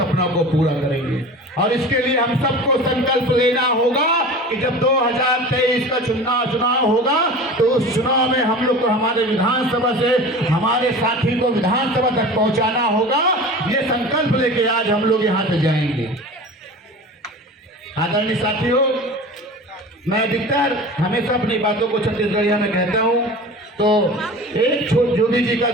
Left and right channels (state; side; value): normal; both; correlation 0.36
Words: को पूरा करेंगे। और इसके लिए हम सबको संकल्प लेना होगा कि जब 2023 का चुनाव होगा तो उस चुनाव में हम लोग को हमारे विधानसभा से हमारे साथी को विधानसभा तक पहुंचाना होगा। ये संकल्प लेके आज हम लोग यहाँ से जाएंगे। आदरणीय साथियों, मैं अधिकतर हमेशा अपनी बातों को छत्तीसगढ़िया में कहता हूँ, तो एक जोगी जी का